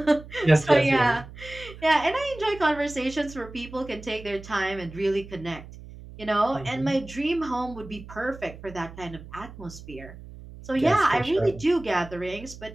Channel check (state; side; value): noise; right; hum, 16 dB below the sound